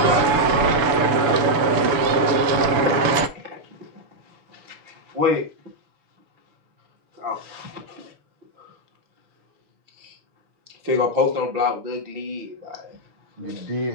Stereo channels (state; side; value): late; left; 7.0 ms